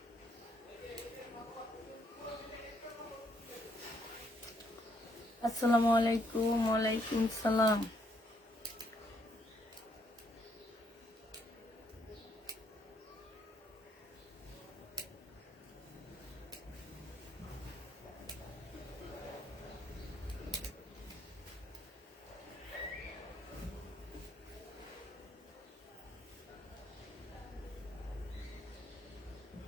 আসসালামু আলাইকুম। ওয়ালাইকুম সালাম।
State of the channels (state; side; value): normal; both; correlation 0.71